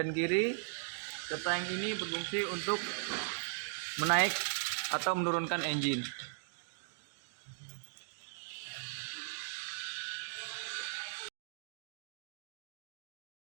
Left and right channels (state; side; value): silent; left; digital silence